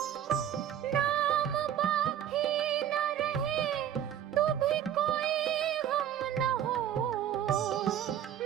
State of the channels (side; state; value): left; quieter; 10.2 dB